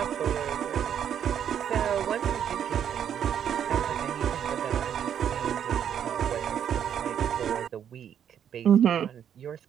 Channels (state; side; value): quieter; left; 9.0 dB